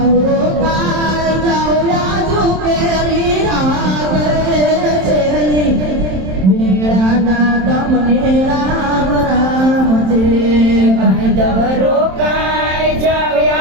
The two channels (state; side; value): late; left; 27 ms